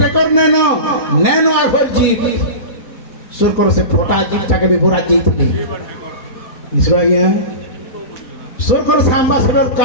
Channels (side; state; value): right; late; 4.1 ms